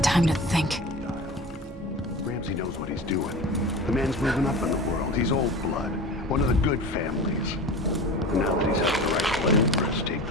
time to think. Ramsey knows what he's doing. The man's moving up in the world. He's old blood. One of the good families. And now that he's helped the rightful empress take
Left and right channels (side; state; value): both; normal; correlation 0.34